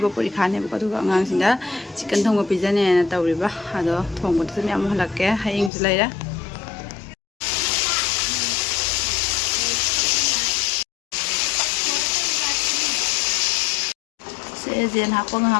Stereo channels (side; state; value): right; drops out; at 5.7 s